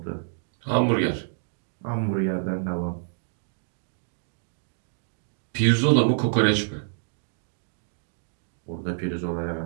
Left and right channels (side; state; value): left; silent; digital silence